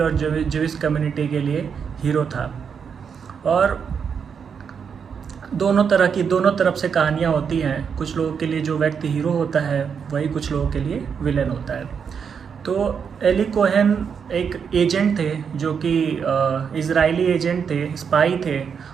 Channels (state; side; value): quieter; left; 6.7 dB